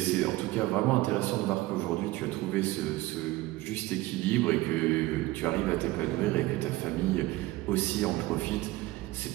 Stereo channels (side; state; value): left; quieter; 18.3 dB